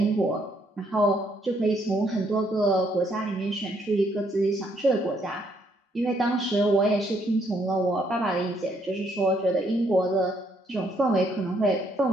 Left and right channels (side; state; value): both; normal; correlation 0.70